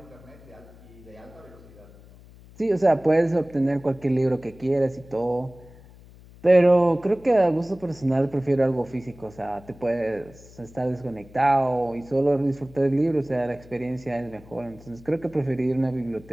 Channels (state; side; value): noise; left; hum, 22 dB below the sound